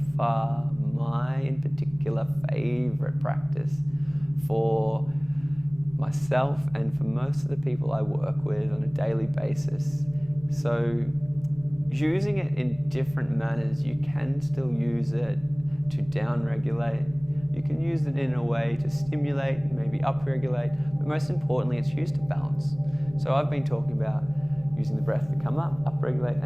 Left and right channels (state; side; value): noise; right; rumble, 21 dB below the sound